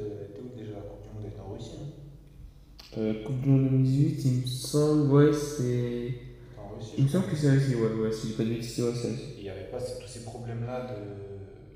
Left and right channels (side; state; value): both; identical; correlation 1.00